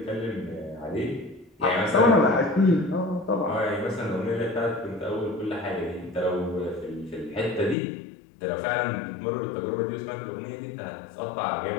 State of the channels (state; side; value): drops out; right; at 7.8 s